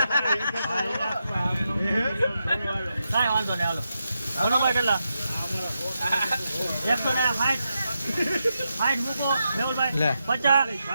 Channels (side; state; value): both; inverted; correlation -0.86